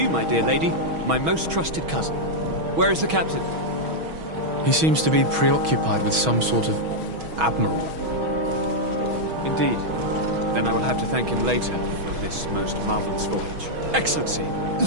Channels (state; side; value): late; left; 6.2 ms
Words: my dear lady, my most trusted cousin. Where is the captain? He seems to be preoccupied with some sort of admiral. Indeed. Then I will have to thank him later for this most marvelous voyage. Excellency,